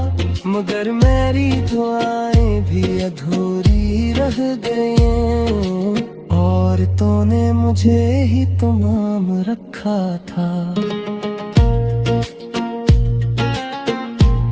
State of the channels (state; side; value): identical; both; correlation 1.00